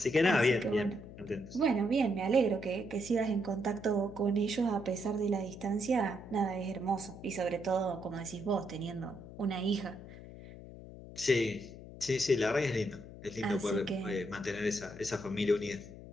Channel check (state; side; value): noise; left; hum, 15 dB below the sound